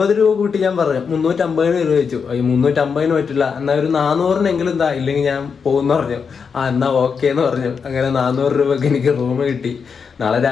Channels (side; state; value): right; quieter; 6.0 dB